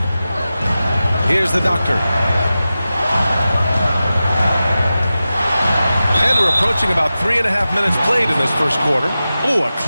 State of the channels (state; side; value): inverted; both; correlation -0.94